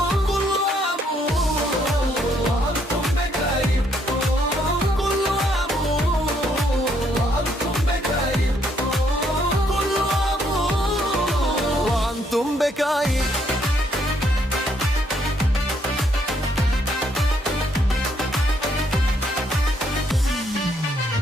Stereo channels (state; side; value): normal; both; correlation 0.71